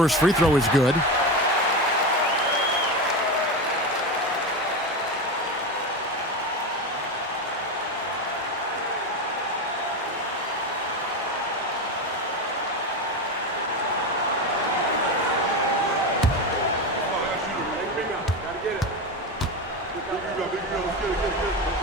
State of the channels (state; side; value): normal; both; correlation 0.19